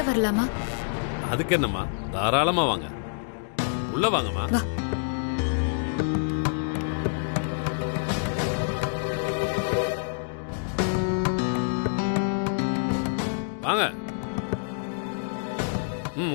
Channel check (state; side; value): silent; right; digital silence